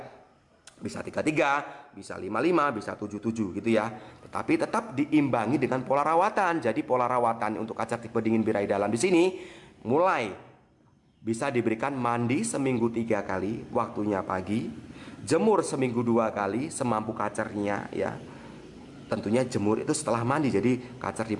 Bisa 33, bisa 55, bisa 77 gitu ya. Tetapi tetap diimbangi dengan pola rawatan. Jadi pola rawatan untuk kaca tipe dingin birahi dalam di sini mulai bisa diberikan mandi seminggu 3 kali, waktunya pagi, jemur seminggu 2 kali semampu kacernya ya. Tentunya jemur itu setelah mandi, jadi kacer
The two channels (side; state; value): both; identical; correlation 1.00